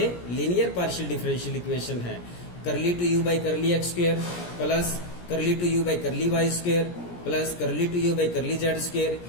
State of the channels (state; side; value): late; right; 17 ms